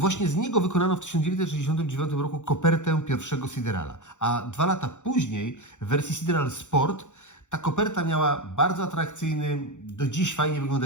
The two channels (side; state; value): right; late; 0.85 ms